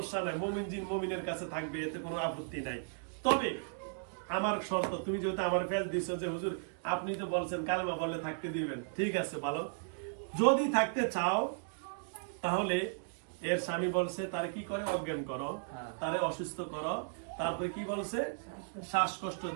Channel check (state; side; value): silent; left; digital silence